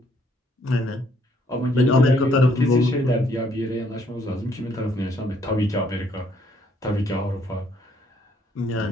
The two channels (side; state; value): both; normal; correlation 0.67